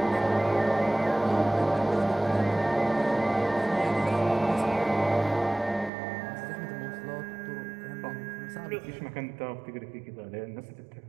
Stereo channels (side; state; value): left; drops out; at 5.9 s